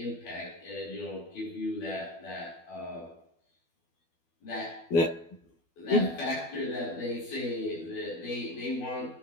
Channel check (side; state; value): right; late; 12 ms